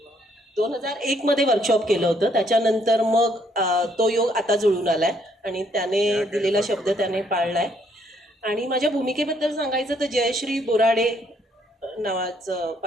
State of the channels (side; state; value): both; normal; correlation 0.69